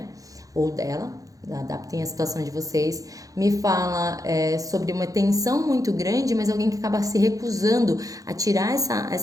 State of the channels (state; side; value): late; left; 0.17 ms